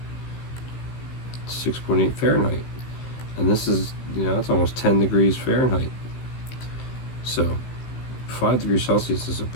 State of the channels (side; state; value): right; late; 16 ms